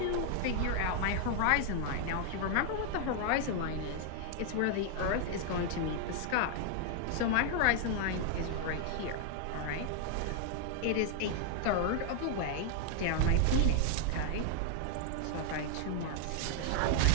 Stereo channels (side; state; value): both; different; correlation 0.00